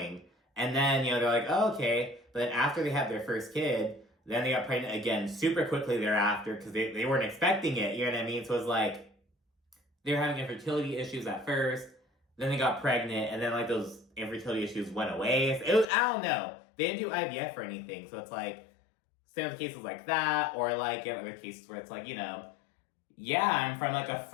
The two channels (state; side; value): drops out; right; at 15.9 s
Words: and then, you know, they're like, oh, okay, but then after they had their first kid, then they got pregnant again super quickly thereafter, because they weren't expecting it, you know what I mean? So it was like, they were having infertility issues at first, then they got pregnant, and then like those infertility issues went away. It was, I don't know. They didn't do IVF or anything, so it's like, same with cases like that, or like in other cases where it's like, you know, yeah, I'm from like a